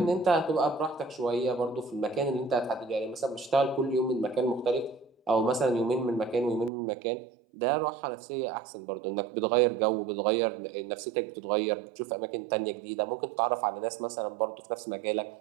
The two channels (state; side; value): drops out; left; at 6.7 s